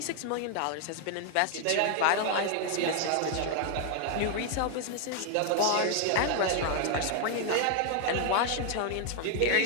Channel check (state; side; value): different; both; correlation 0.00